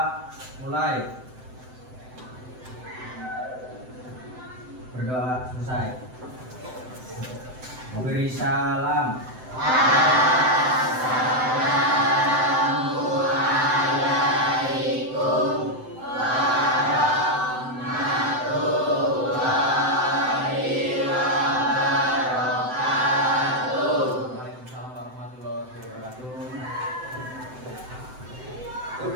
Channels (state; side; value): late; left; 7.8 ms